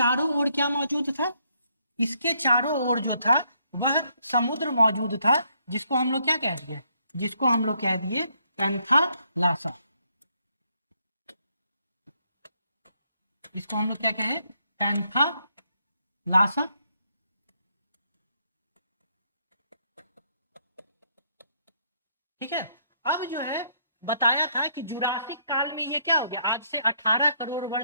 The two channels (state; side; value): inverted; both; correlation -0.72